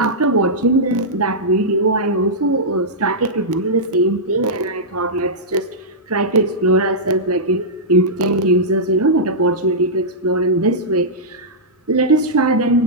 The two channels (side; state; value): both; normal; correlation -0.12